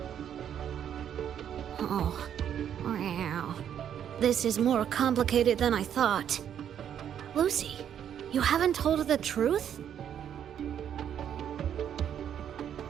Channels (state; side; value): quieter; left; 9.3 dB